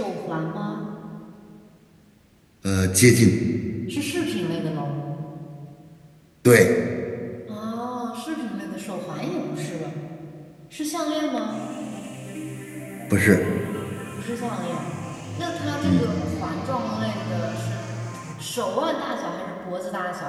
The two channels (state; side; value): identical; both; correlation 1.00